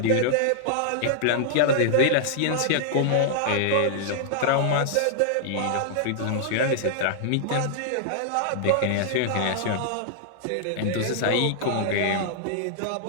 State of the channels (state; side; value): different; both; correlation -0.01